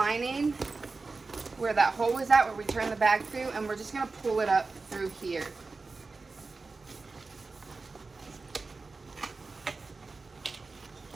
where that hole was at, where we turned the bag through, and we're just going to pull it up through here.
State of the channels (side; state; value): left; quieter; 4.0 dB